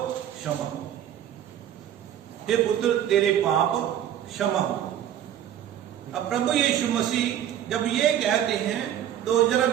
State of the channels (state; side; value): quieter; left; 10.7 dB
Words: क्षमा हो. हे पुत्र तेरे पाप क्षमा हो. अब प्रभु यीशु मसीह जब ये कहते हैं तो जरा